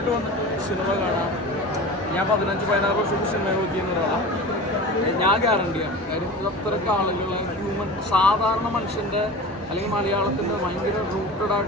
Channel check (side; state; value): both; normal; correlation 0.34